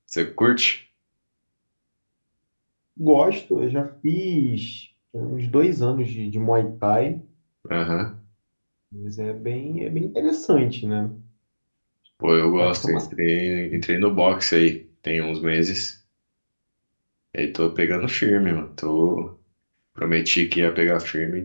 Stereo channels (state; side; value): inverted; both; correlation -1.00